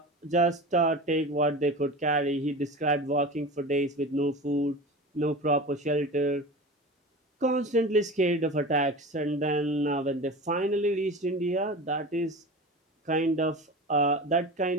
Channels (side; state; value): both; normal; correlation 0.31